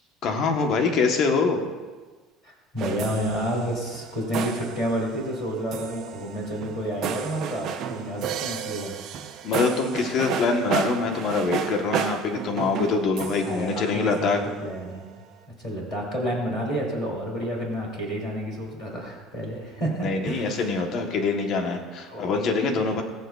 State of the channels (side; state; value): both; normal; correlation 0.46